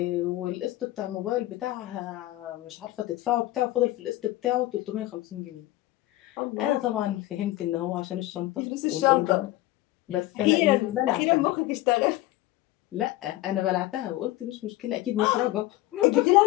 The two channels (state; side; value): quieter; right; 17.0 dB